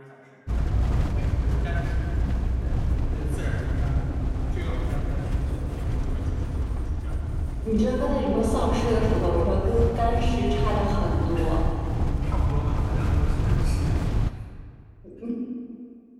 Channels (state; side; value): identical; both; correlation 1.00